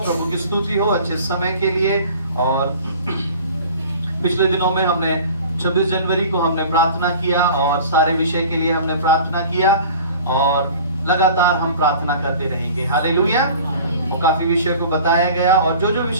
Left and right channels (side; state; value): both; inverted; correlation -0.44